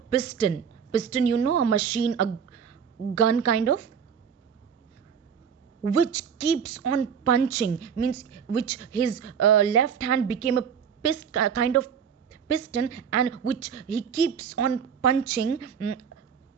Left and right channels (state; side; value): quieter; left; 7.3 dB